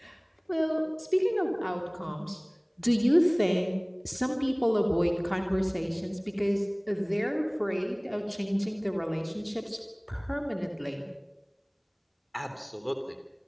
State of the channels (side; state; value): both; identical; correlation 1.00